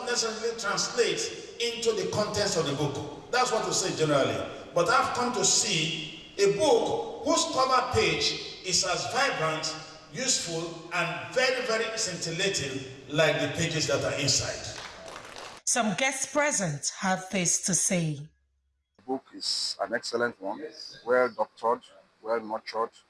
necessarily translate into the contents of the book. That's what we say generally. But I've come to see a book whose cover page is as vibrant, useful, and very, very scintillating like the pages that are inside. Some guests present have this to say. The book is an excellent one, well doctored, well nurtured,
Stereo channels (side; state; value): both; identical; correlation 1.00